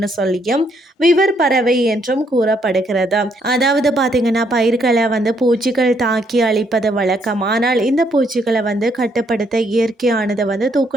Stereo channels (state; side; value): normal; both; correlation 0.71